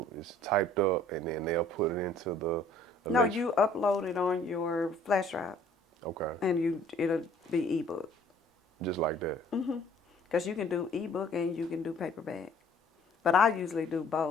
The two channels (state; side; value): normal; both; correlation 0.55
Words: It's typed up, and then they'll put it into the. No, you upload it on your flash drive, Okay. and it'll be ebook. Just like that. Because you can do ebook and you can do paperback. But I usually do